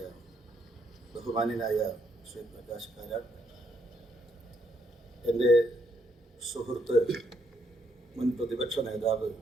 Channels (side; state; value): both; normal; correlation 0.74